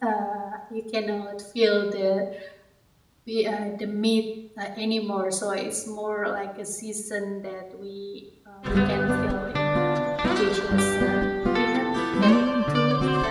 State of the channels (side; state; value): both; identical; correlation 1.00